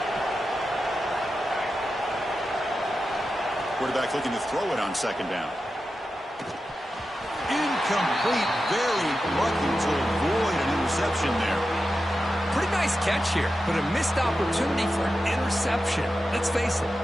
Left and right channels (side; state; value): both; normal; correlation 0.91